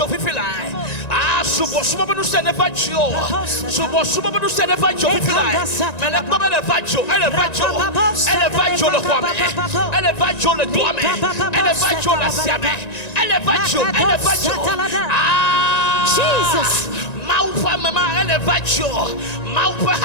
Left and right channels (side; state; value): right; late; 1.9 ms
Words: if you like. Subo no se never joke. Subo no se never joke if you like. Mais le comme elle va joke, elle va joke le quoi, elle va joke le doigt, elle va joke la siame, elle va joke. Jesus. Maupa mama elevajo, maupa